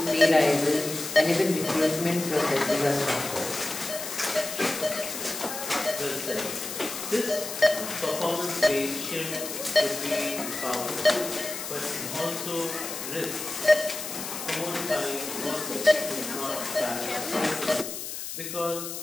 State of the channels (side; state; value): left; noise; hiss, 7 dB below the sound